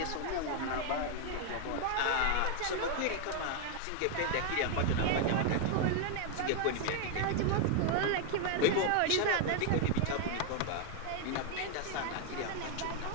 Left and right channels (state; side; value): different; both; correlation 0.00